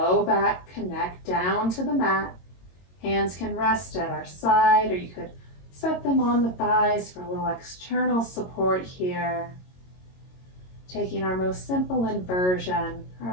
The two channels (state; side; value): late; right; 22 ms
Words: back connect down to the mat. Hands can rest at our side, or you could set them on the thighs for a little external support here. Taking our most simple inversion,